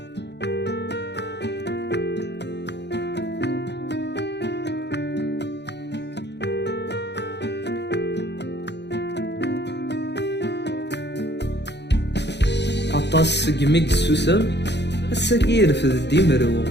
عطاس قميق السوسم السكير في الديمرو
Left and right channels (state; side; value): late; right; 0.50 ms